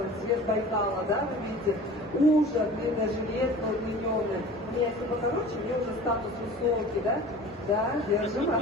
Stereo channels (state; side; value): normal; both; correlation 0.41